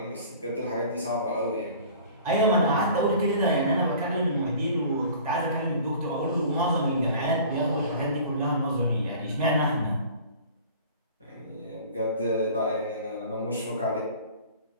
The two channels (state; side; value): inverted; both; correlation -0.45